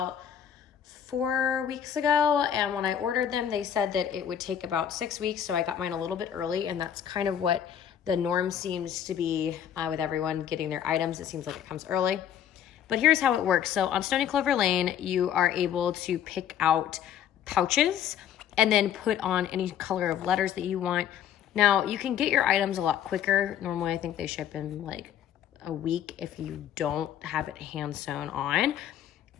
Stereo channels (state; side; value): quieter; right; 9.5 dB